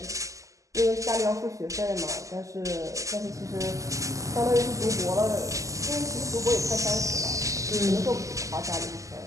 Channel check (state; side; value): late; left; 0.16 ms